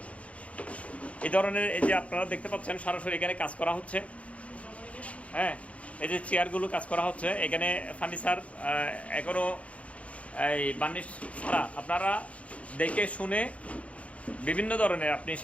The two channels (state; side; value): late; right; 0.064 ms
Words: এই ধরনের এই যে আপনারা দেখতে পাচ্ছেন সরাসরি এখানে কাজ করা হচ্ছে। হ্যাঁ, এই যে চেয়ারগুলো কাজ করা হচ্ছে, এখানে ফার্নিচার এখনও এই বার্নিশ ছাড়া। আপনারা দেখে শুনে বিভিন্ন ধরনের আপনি